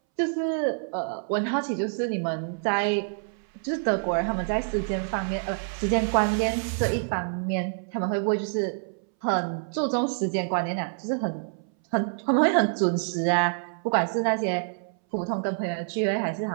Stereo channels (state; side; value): silent; left; 60 dB below the other